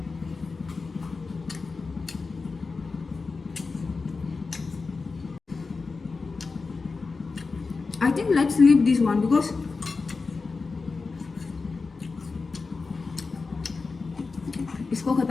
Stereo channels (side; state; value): right; quieter; 4.3 dB